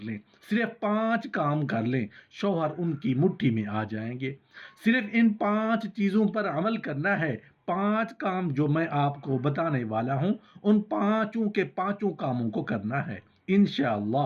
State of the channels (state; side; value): identical; both; correlation 1.00